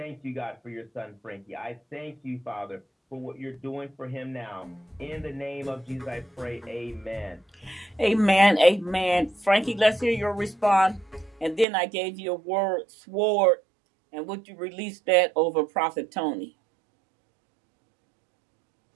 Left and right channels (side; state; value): left; drops out; at 11.7 s